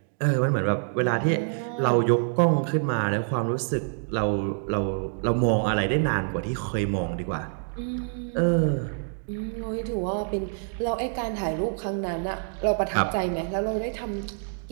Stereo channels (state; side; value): silent; left; digital silence